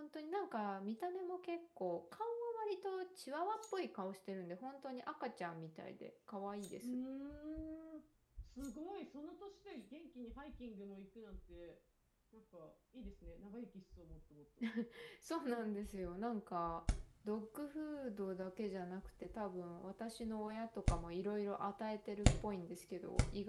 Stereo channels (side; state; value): both; identical; correlation 1.00